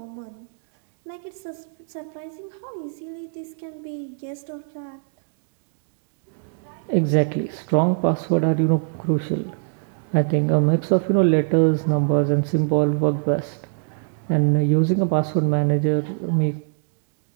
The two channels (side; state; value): left; silent; 64 dB below the other